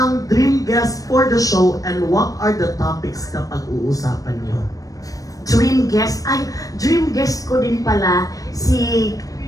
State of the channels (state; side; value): late; right; 0.17 ms